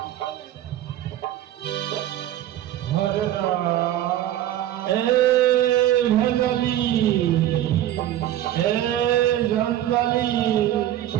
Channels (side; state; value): left; quieter; 12.7 dB